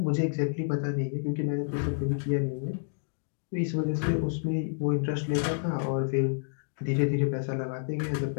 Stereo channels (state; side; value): silent; right; digital silence